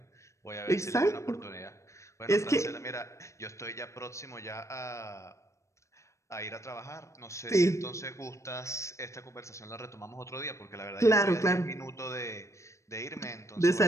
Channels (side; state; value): right; late; 0.14 ms